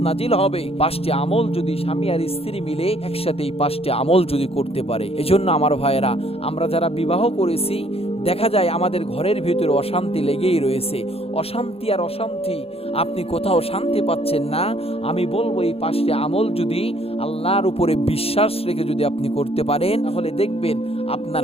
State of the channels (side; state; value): right; late; 0.28 ms